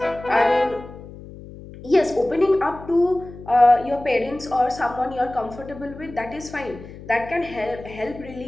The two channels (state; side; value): noise; left; hum, 16 dB below the sound